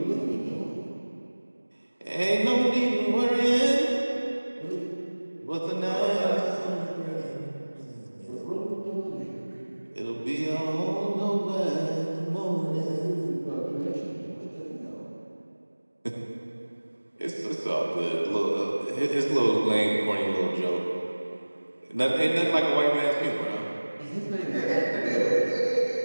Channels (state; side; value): inverted; both; correlation -1.00